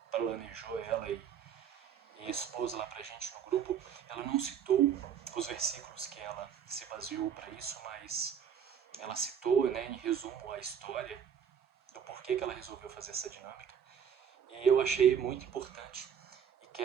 planejou ela e expôs lá pra gente no grupo. Ela não citou os versículos que ela se baseou para isso, mas ela citou, né, em resumo, a história do porquê que ela resolveu fazer essa dinâmica. E eu achei muito importante e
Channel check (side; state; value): left; quieter; 8.1 dB